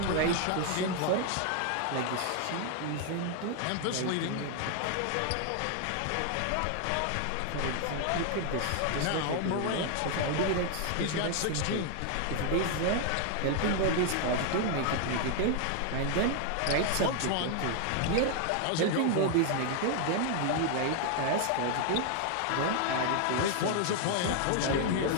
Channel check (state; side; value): different; both; correlation 0.00